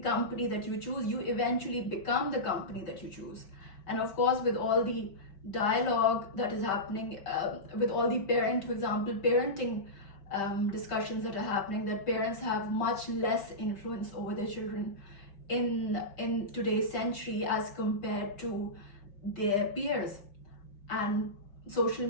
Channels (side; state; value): right; late; 5.3 ms